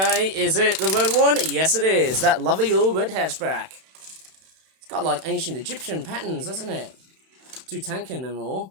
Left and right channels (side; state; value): left; late; 31 ms